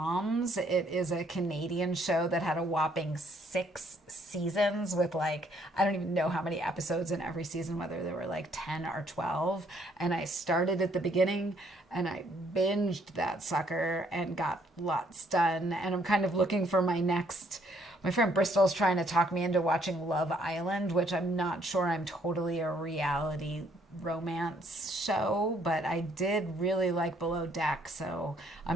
It is a Canadian show that had a whopping 6 seasons with like, I don't even know how many episodes in every season, whether there were like 10 or 12. And I started at the beginning and I binged that sucker and got lots done. And I'm kind of looking for my next. My friend Bristol's trying to talk me into watching Love Island, which I'm not sure I'm totally a reality romance show, but I did really like Below Deck, so I'm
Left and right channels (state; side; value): normal; both; correlation 0.67